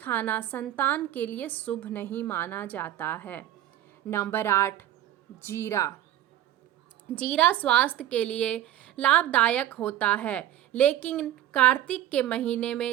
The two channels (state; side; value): quieter; left; 12.7 dB